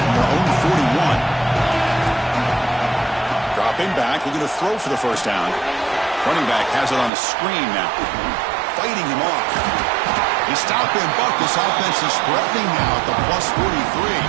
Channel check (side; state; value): left; drops out; at 7.1 s